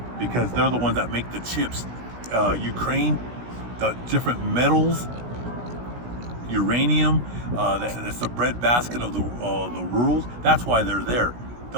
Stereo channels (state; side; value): late; left; 17 ms